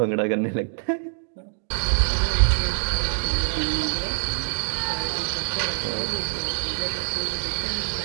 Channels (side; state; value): left; silent; 62 dB below the other